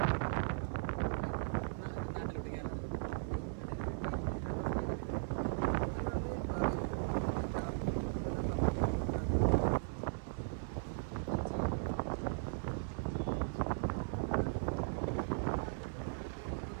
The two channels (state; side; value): silent; left; 53 dB below the other